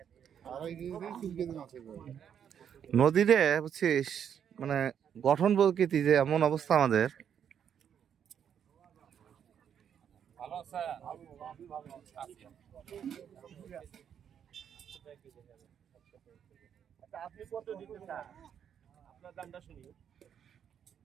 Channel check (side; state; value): left; quieter; 8.5 dB